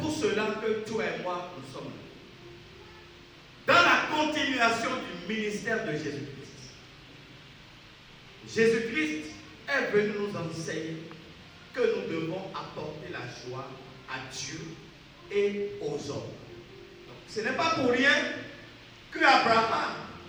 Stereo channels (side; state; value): both; identical; correlation 1.00